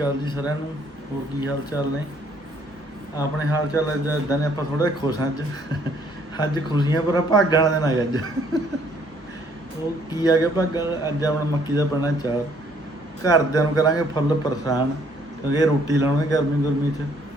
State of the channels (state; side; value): normal; both; correlation 0.64